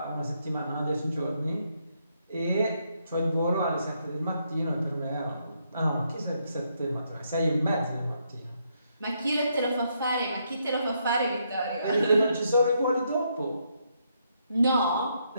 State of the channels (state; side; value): inverted; both; correlation -0.76